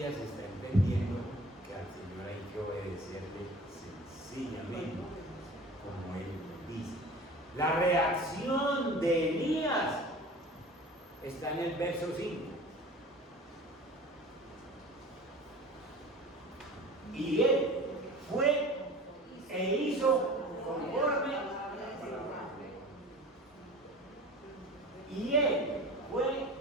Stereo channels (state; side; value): normal; both; correlation 0.40